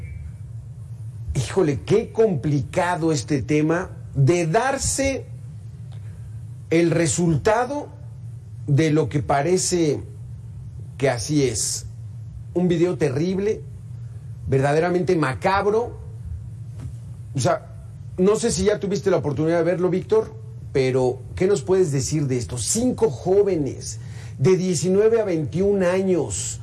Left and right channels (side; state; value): both; identical; correlation 1.00